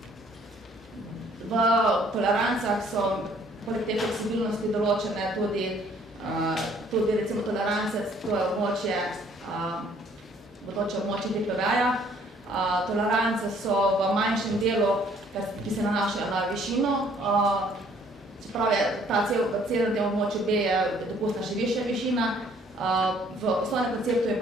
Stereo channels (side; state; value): both; normal; correlation 0.61